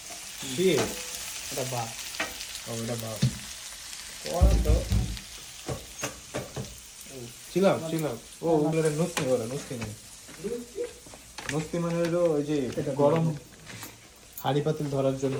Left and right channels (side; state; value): both; identical; correlation 1.00